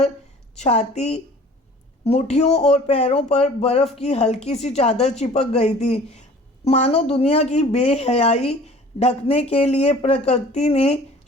छाती, मुट्ठियों और पैरों पर बर्फ़ की हल्की सी चादर चिपक गई थी। मानो दुनिया की बेहयाई ढकने के लिए प्रकृति ने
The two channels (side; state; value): both; normal; correlation 0.48